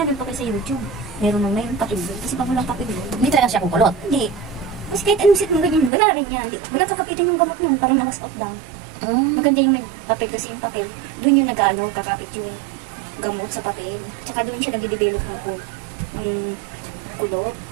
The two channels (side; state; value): left; drops out; at 5.9 s